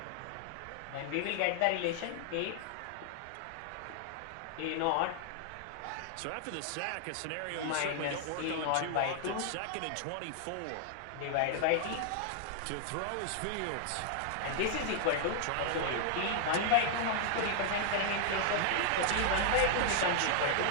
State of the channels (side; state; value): both; different; correlation 0.00